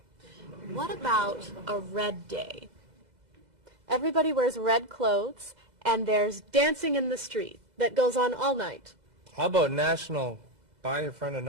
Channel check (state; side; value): late; left; 2.0 ms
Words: What about a red day? Everybody wears red clothes, and there's dancing in the street that goes on all night. How about National Buy Your Friend